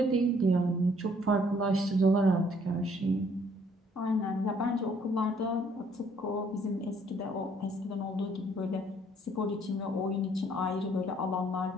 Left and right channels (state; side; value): normal; both; correlation 0.64